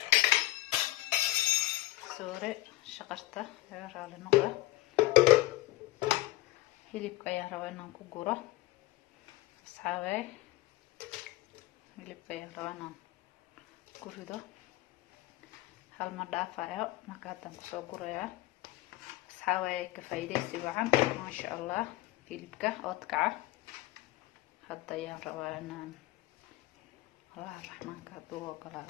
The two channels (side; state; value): right; quieter; 18.0 dB